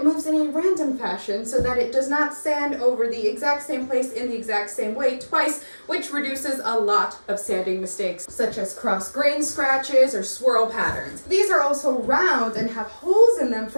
moves in a random fashion so that it does not sand over the exact same place in the exact same way twice, which reduces a lot of sanding mistakes, such as cross grain scratches or swirl patterns. These are also round and have holes in them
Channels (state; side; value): inverted; both; correlation -1.00